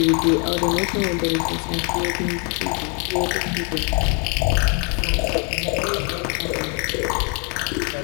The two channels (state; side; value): quieter; right; 36.2 dB